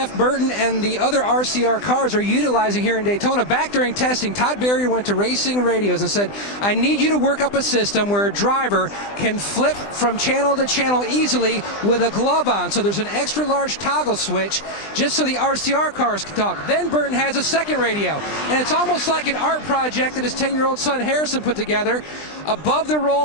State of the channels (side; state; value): right; late; 20 ms